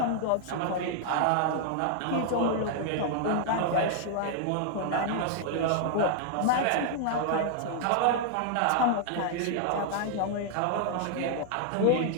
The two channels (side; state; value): both; different; correlation 0.00